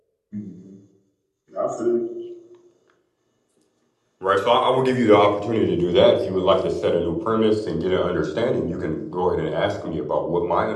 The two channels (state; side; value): identical; both; correlation 1.00